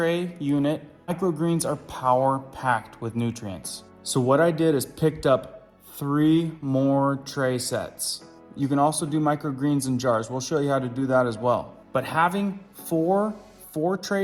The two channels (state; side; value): identical; both; correlation 1.00